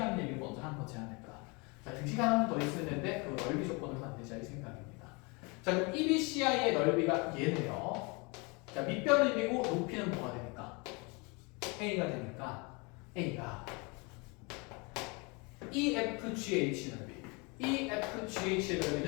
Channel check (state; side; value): quieter; right; 29.2 dB